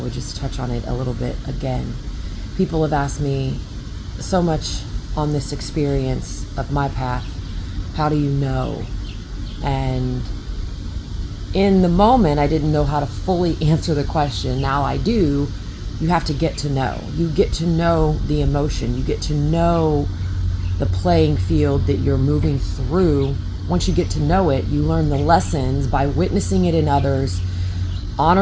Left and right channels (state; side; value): identical; both; correlation 1.00